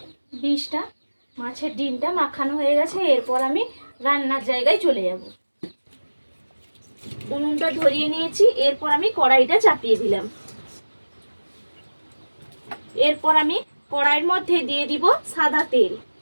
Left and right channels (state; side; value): inverted; both; correlation -1.00